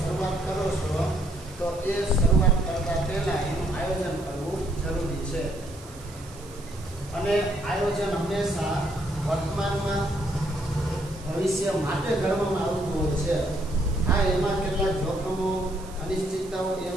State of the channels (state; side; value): noise; right; hiss, 20 dB below the sound